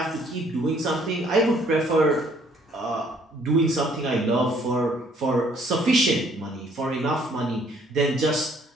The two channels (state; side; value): normal; both; correlation 0.62